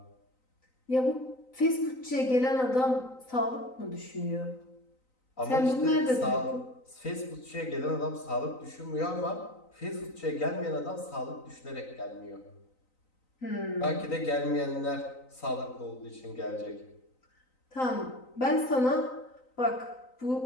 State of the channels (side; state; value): right; late; 3.9 ms